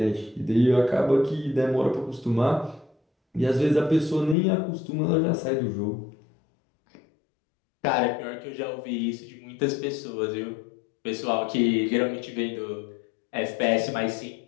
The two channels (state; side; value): drops out; right; at 4.4 s